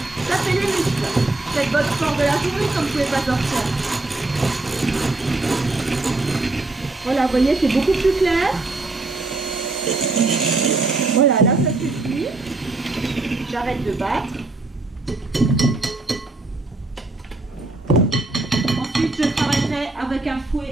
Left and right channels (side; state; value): left; quieter; 3.2 dB